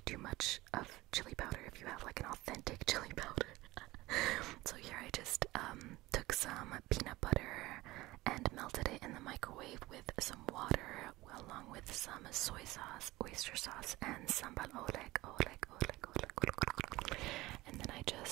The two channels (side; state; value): left; quieter; 19.0 dB